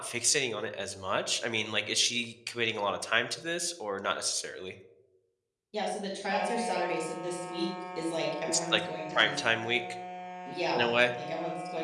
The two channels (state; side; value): identical; both; correlation 1.00